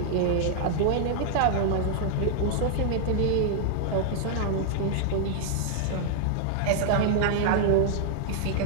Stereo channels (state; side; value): different; both; correlation -0.01